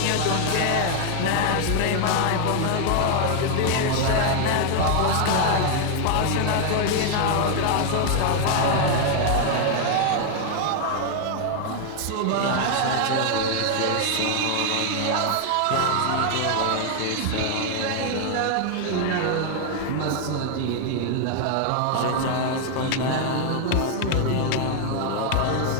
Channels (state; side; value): different; both; correlation 0.00